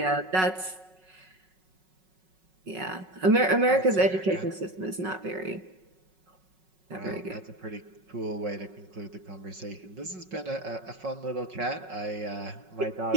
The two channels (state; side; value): late; left; 5.4 ms